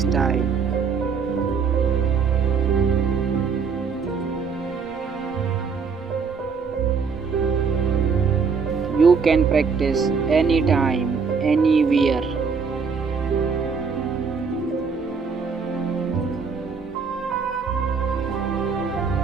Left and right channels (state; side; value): quieter; left; 5.5 dB